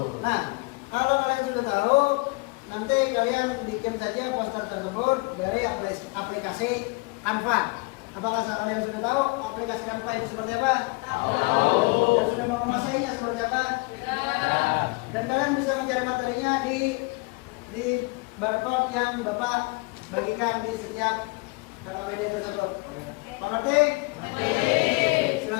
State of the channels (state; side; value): quieter; right; 27.5 dB